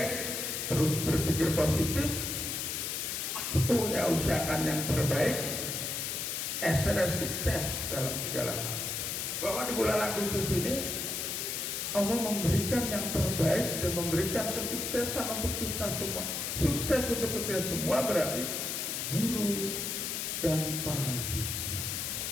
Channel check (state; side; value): noise; left; hiss, 2 dB below the sound